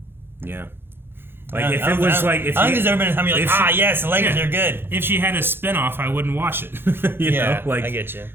Yeah. Like, if it was like, if I think there's ever been a time you're like, yes, the Lakers are good. If she had a spinoff, I wouldn't watch it. you know? Like, I get you.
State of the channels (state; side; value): late; left; 0.10 ms